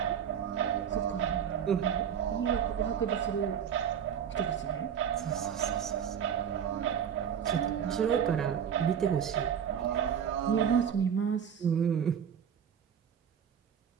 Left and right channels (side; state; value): left; quieter; 8.2 dB